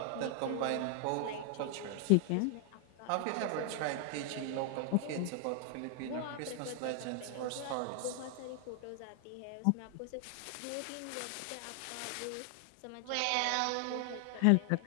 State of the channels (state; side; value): different; both; correlation 0.00